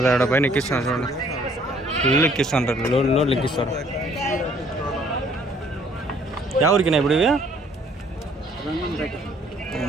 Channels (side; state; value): both; normal; correlation 0.61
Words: పైన ఎక్కిస్తున్నారు చూడండి. ఇల్లు ఎక్కిస్తుంటారు, లోడ్లు ఎక్కిస్తారు. ఎవరికినా ఇప్పుడు ఇవి?